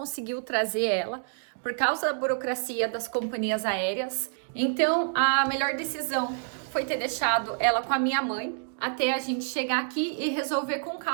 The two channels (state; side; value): silent; left; digital silence